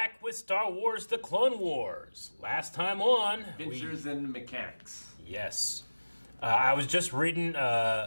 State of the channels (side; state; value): both; inverted; correlation -1.00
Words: with Star Wars The Clone Wars. Last time on... Adventures in Mechanics. Yes. I was just reading